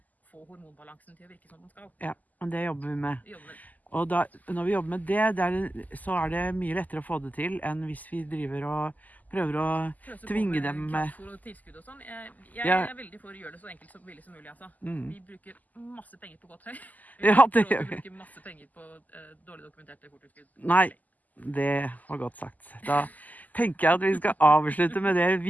få hormonbalansen til å virke som den skal. Ja, men det jobber vi med. Vi jobber med det. Og da, når vi jobber med det, så er det mye lettere å få det til enn hvis vi driver og prøver å Pøse på tvinge med dem kraftfôr og tilskudd og sånn. Jeg Ja. er veldig for å gjøre det så enkelt som billig som mulig, altså. mm. Vi bruker masse penger på godt høy. Ja, det Vi gjør vi. bruker masse penger på dårlig dokumenterte fôrtilskudd. Nei. Det var godt sagt. Da tenker jeg at vi skal avslutte med det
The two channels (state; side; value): late; right; 0.080 ms